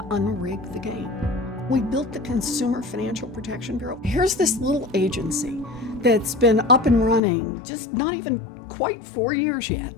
unrig the game. We built the Consumer Financial Protection Bureau. Here's this little agency that's been up and running just not even quite 4 years yet.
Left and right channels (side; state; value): right; drops out; at 7.2 s